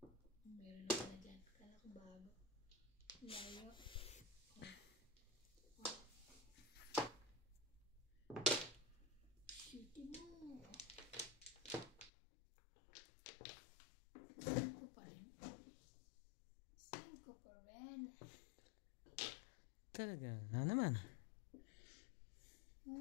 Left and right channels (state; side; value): drops out; right; at 12.1 s